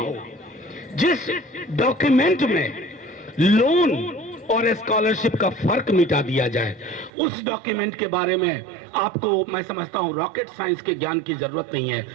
जिस डॉक्यूमेंट में लोन और स्कॉलरशिप का फर्क मिटा दिया जाए, उस डॉक्यूमेंट के बारे में आपको, मैं समझता हूं, रॉकेट साइंस के ज्ञान की जरूरत नहीं है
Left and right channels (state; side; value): drops out; left; at 7.1 s